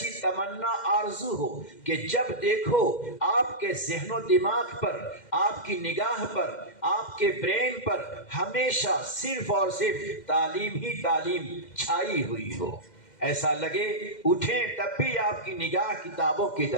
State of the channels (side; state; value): right; late; 2.1 ms